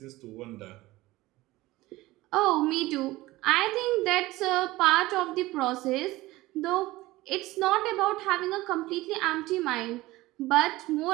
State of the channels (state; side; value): quieter; left; 18.6 dB